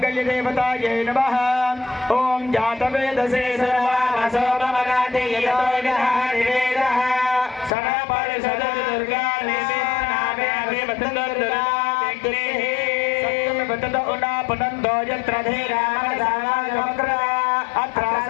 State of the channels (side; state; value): right; drops out; at 7.7 s